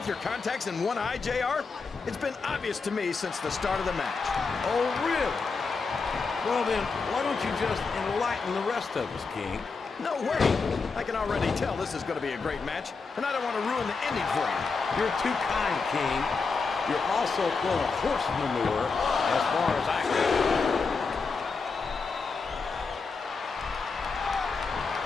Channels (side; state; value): right; quieter; 4.6 dB